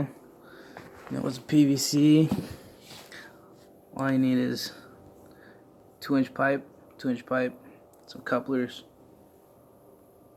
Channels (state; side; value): identical; both; correlation 1.00